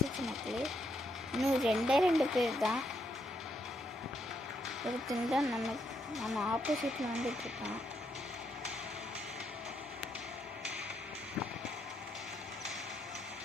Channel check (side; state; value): both; normal; correlation 0.77